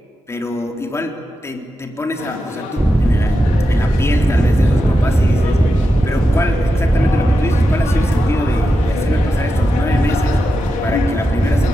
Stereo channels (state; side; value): normal; both; correlation 0.89